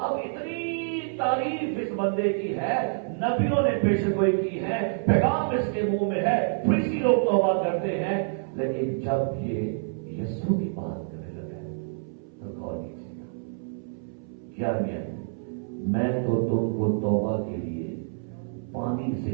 اتنی تعریف اس بندے کی ہے, نبیوں نے پیشن گوئی کی ہے, پیغام اس کے منہ میں ہے, فریسی لوگ توبہ کرتے ہیں. لیکن جب یہ یسوع کی بات کرنے لگا ہے تو غور کیجیے گا کیا میں تو تم کو توبہ کے لیے پانی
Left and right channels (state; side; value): silent; left; 60 dB below the other